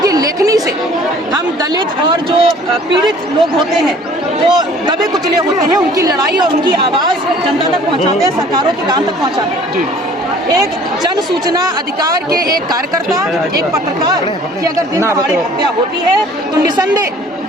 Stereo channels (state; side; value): normal; both; correlation 0.52